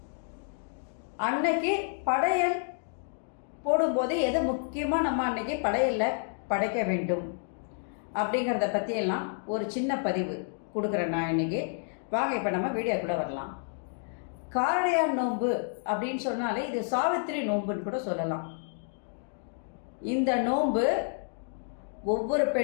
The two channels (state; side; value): silent; right; digital silence